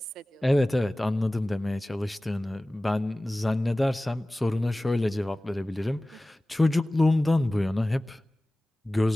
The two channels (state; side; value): normal; both; correlation 0.98